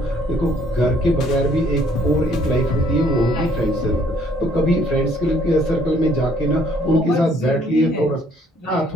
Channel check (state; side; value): normal; both; correlation 0.63